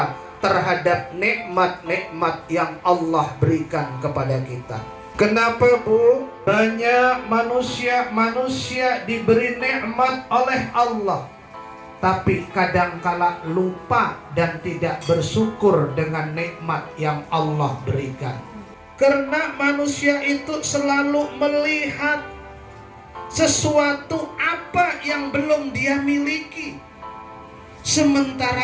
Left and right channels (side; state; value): both; identical; correlation 1.00